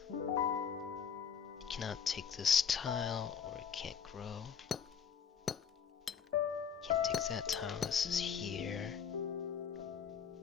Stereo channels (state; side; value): quieter; right; 7.2 dB